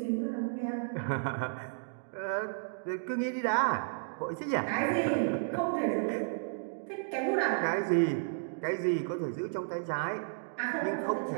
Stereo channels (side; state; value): left; silent; digital silence